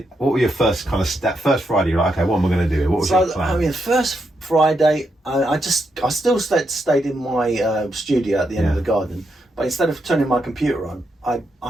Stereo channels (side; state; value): both; normal; correlation 0.82